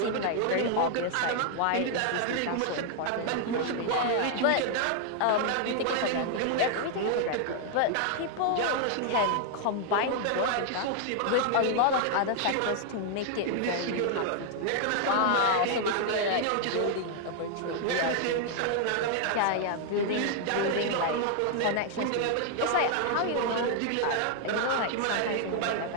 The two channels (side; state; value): both; different; correlation 0.00